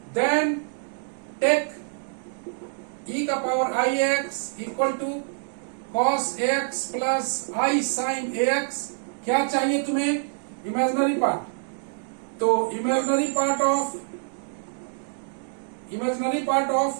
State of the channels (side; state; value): left; silent; digital silence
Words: देन टेक ई का power I x equal to cos x plus I sine a x. क्या चाहिए तुम्हें? Imaginary part. तो imaginary part